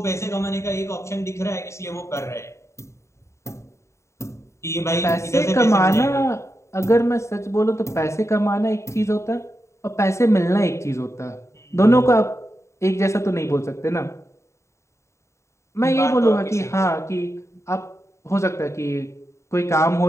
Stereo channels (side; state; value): right; late; 0.14 ms